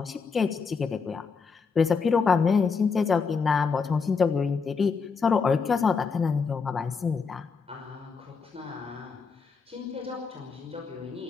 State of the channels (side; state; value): right; quieter; 5.3 dB